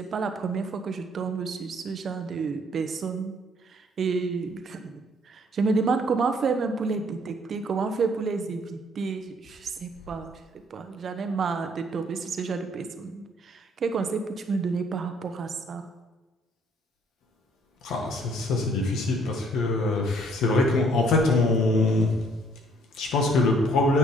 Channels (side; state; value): both; normal; correlation 0.62